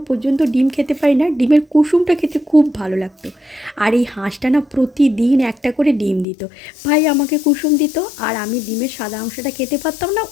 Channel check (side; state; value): right; drops out; at 6.2 s